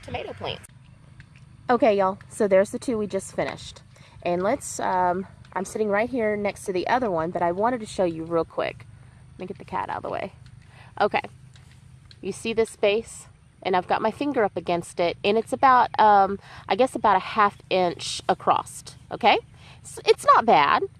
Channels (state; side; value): identical; both; correlation 1.00